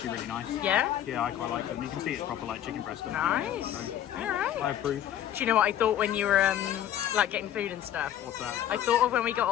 really nice. Yeah? Yeah, I quite like them. You can see it's proper like chicken breast. Nice. So All right. I approve. Do you know what I thought when you were like getting food and stuff? What's that? I thought of when we got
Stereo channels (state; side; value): quieter; right; 11.2 dB